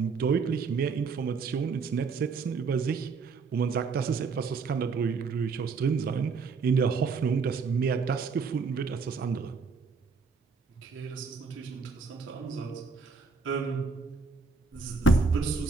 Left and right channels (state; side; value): quieter; left; 4.8 dB